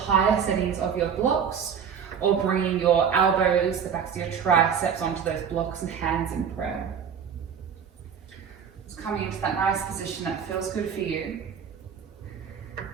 settings of your blocks or bringing your elbows, the backs of your triceps onto those blocks and hands in prayer. Just coming into that nice position that feels good for you.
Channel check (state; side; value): quieter; left; 7.3 dB